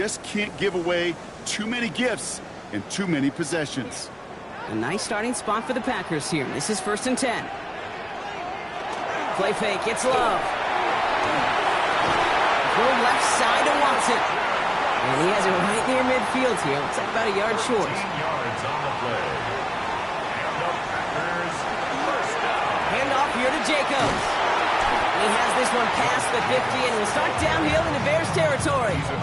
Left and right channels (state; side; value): identical; both; correlation 1.00